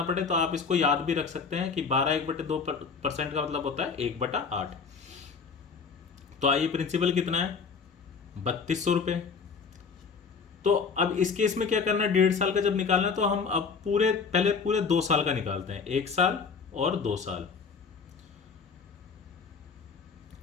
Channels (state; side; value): quieter; right; 5.5 dB